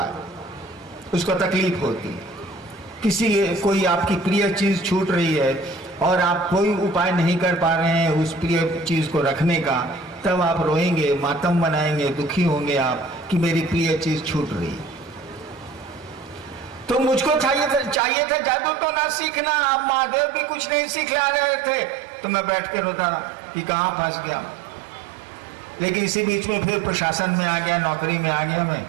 उसको तकलीफ होती है। कोई आपकी प्रिय चीज छूट रही है और आप कोई उपाय नहीं कर पा रहे हैं उस प्रिय चीज को रखने का, तब आप रोएंगे, मातम मनाएंगे, दुखी होंगे आप कि मेरी प्रिय चीज छूट रही है। तो मुझको चाहिए था जादू तो ना सीखना, अब महादेव भी कुछ नहीं सिखला रहे थे, तो मैं बैठ के रोता रहा कि कहाँ फंस गया। लेकिन इसी बीच में फिर प्रशासन में आ गया, नौकरी में आ गया मैं,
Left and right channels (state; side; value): drops out; left; at 18.0 s